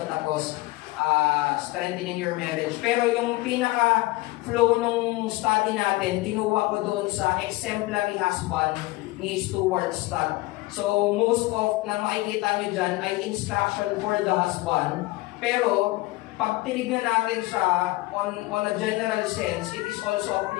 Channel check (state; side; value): quieter; right; 20.5 dB